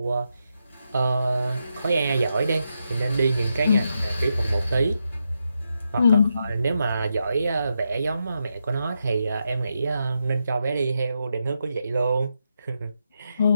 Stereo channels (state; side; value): inverted; both; correlation -0.84